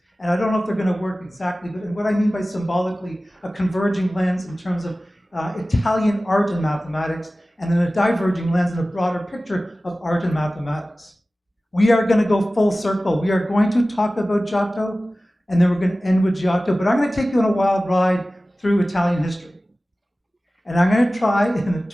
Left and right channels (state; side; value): normal; both; correlation 0.96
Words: And I don't know if they're going to work exactly, but what I mean by symbolically, a converging lens in terms of Italian art and mathematics, and then a diverging lens and a broader picture of art and mathematics. We are going to go full circle. We are going to talk about Giotto, and then we're going to end with Giotto. But I'm going to take you on a wild ride through Italian history. And I'm going to try, in the